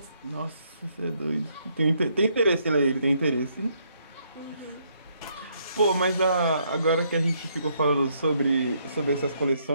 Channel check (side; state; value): both; inverted; correlation -0.72